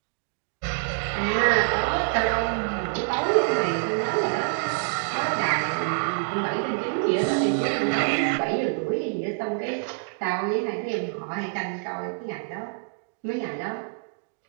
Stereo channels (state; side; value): silent; left; digital silence